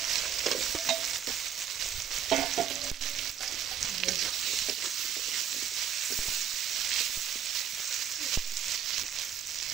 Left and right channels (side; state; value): left; quieter; 9.1 dB